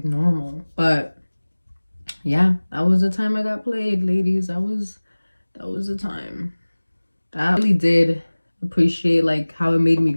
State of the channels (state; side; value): inverted; both; correlation -1.00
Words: normal? But yeah, that was the time I got played, ladies. That was the time. That really did appreciate like how it made me